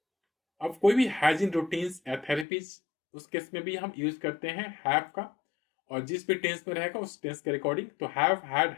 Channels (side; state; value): right; drops out; at 2.5 s